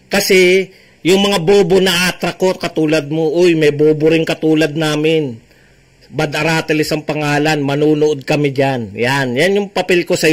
Kasi, yung mga bobo na attract ko, katulad mo, uy, may bobo rin katulad namin. Bad Aratilis ang pangalan, manunood kami dyan. Yan yung papel ko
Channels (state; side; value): identical; both; correlation 1.00